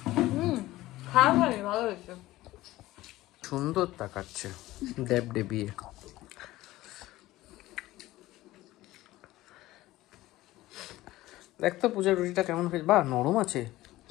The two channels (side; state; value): right; quieter; 17.0 dB